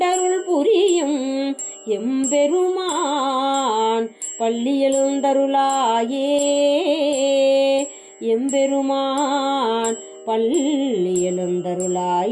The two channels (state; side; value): identical; both; correlation 1.00